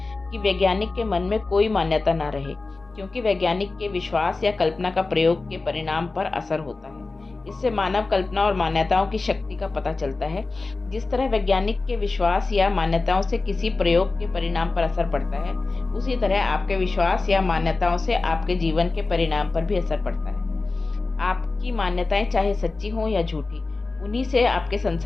कि वैज्ञानिक के मन में कोई मान्यता न रहे, क्योंकि वैज्ञानिक के विश्वास या कल्पना का प्रयोग के परिणाम पर असर होता है। इससे मानव कल्पना और मान्यताओं की शक्ति का पता चलता है। जिस तरह वैज्ञानिक के विश्वास या मान्यताओं से किसी प्रयोग के परिणाम पर असर पड़ता है, उसी तरह आपके विश्वास या मान्यताओं से आपके जीवन के परिणाम पर भी असर पड़ता है। आपकी मान्यताएं चाहे सच्ची हों या झूठी, उन्हीं से आपके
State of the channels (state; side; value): quieter; right; 3.6 dB